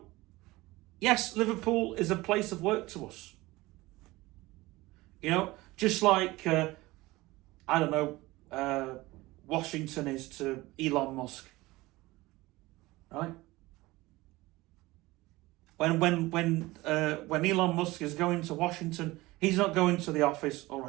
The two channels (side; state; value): left; quieter; 20.0 dB